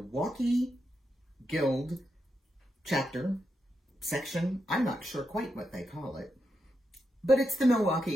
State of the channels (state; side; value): normal; both; correlation 0.85